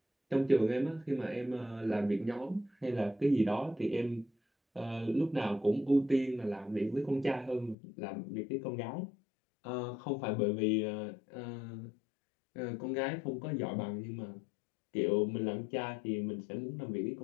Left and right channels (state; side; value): drops out; right; at 7.8 s